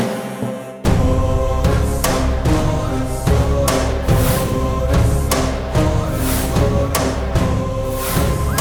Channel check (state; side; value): identical; both; correlation 1.00